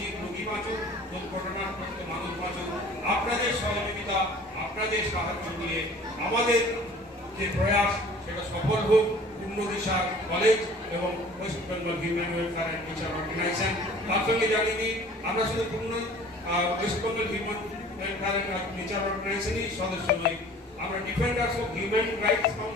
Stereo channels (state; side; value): normal; both; correlation 0.48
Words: বাঁচুক, দুর্ঘটনাগ্রস্ত মানুষ বাঁচুক। আপনাদের সহযোগিতা, আপনাদের সাহায্য নিয়ে আমাদের যে প্রয়াস সেটা সফল হোক। পূর্ণ দিশা কলেজ এবং West Bengal human welfare and teacher organisation. তার সঙ্গে জানিয়ে দিই আমরা শুধু Purna West Bengal human welfare and teacher অর্গানাইজেশনই সদস্য নই, আমরা ডিফেন্ডার্স অফ হিউম্যান রাইটস